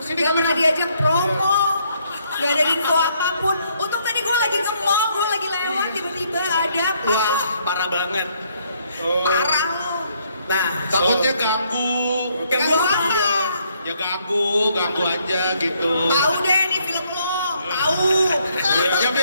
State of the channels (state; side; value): inverted; both; correlation -0.70